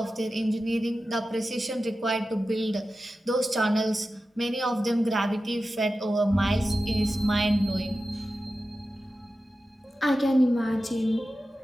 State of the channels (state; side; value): normal; both; correlation 0.93